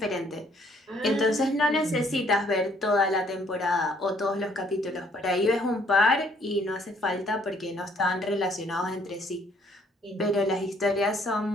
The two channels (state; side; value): normal; both; correlation 0.64